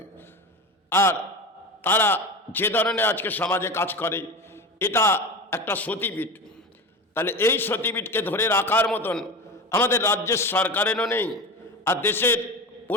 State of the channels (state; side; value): normal; both; correlation 0.27